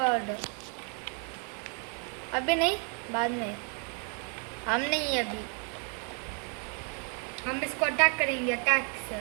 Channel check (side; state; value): left; quieter; 39.7 dB